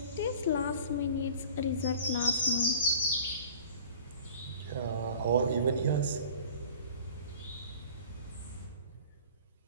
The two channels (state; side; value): inverted; both; correlation -0.43